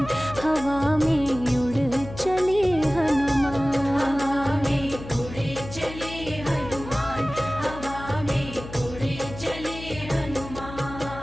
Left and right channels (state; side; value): noise; left; hum, 12 dB below the sound